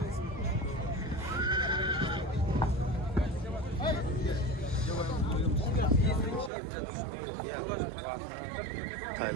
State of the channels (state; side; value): drops out; left; at 6.5 s